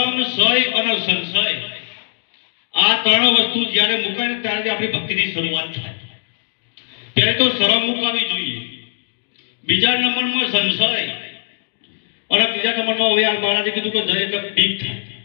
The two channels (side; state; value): right; silent; digital silence